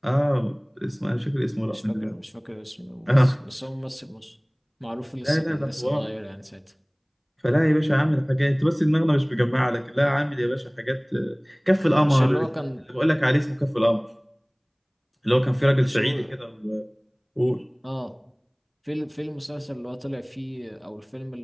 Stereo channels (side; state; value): both; identical; correlation 1.00